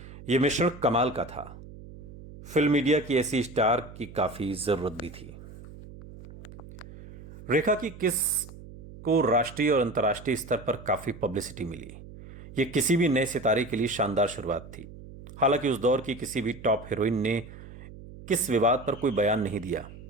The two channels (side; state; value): right; noise; hum, 16 dB below the sound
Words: यह मिश्रण कमाल का था। फिल्म मीडिया की ऐसी स्टार की काफी जरूरत भी थी। रेखा की किस को राष्ट्रीय और अंतर्राष्ट्रीय स्तर पर काफी पब्लिसिटी मिली। यह किसी भी नए सितारे के लिए शानदार शुरुआत थी। हालांकि उस दौर की किसी भी टॉप हीरोइन ने किस विवाद पर कोई बयान नहीं दिया,